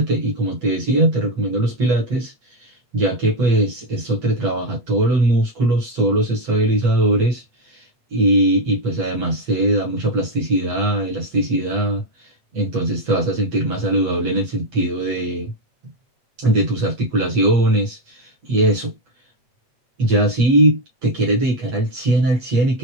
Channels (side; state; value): left; late; 8.2 ms